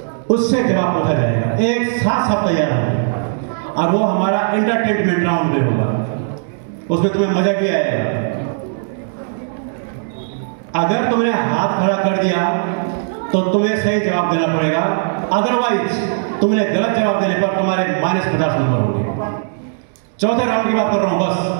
उससे जवाब पूछा जाएगा। एक साथ सब तैयार होंगे और वो हमारा एंटरटेनमेंट राउंड में होगा। उसमें तुम्हें मजा भी आएगा। अगर तुमने हाथ खड़ा कर दिया तो तुम्हें सही जवाब देना पड़ेगा, अदरवाइज तुमने गलत जवाब देने पर तुम्हारे -50 नंबर होंगे। चौथे राउंड की बात कर रहा हूं बस।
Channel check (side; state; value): left; silent; digital silence